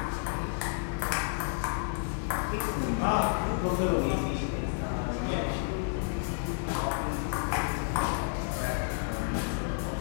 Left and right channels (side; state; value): right; silent; digital silence